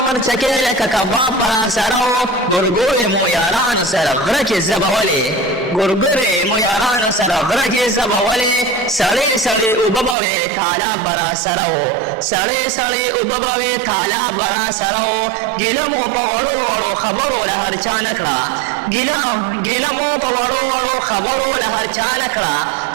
مرچکې لکه کباب به راسره و. ګورګورې مو یارانو سره غره کې زبولې ګورګورې مو یارانو سره غره کې زبولې سړې سړې اوبه به وې تالاب به راسره و. سړې سړې اوبه به وې تالاب به راسره و. ګیله مو په وړو وړو خبرو له هر چا نه کړه ګیله مو په وړو وړو خبرو له هر چا نه کړه.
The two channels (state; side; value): drops out; left; at 10.2 s